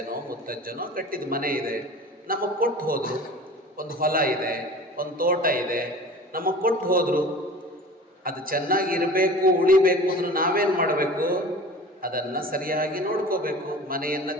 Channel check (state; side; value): normal; both; correlation 0.39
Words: ಮುತ್ತಜ್ಜನೋ ಕಟ್ಟಿದ ಮನೆ ಇದೆ, ನಮಗೆ ಕೊಟ್ಟು ಹೋದರು. ಒಂದು ಹೊಲ ಇದೆ, ಒಂದು ತೋಟ ಇದೆ, ನಮಗೆ ಕೊಟ್ಟು ಹೋದರು. ಅದು ಚೆನ್ನಾಗಿ ಇರಬೇಕು, ಉಳಿಬೇಕು ಅಂದ್ರೆ ನಾವೇನು ಮಾಡಬೇಕು, ಅದನ್ನು ಸರಿಯಾಗಿ ನೋಡ್ಕೋಬೇಕು. ಮನೆಯನ್ನು